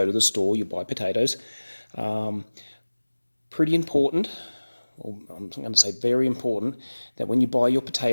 to the store, you buy potatoes. Pretty important, or I'm going to say very important, that when you buy your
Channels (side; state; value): both; inverted; correlation -1.00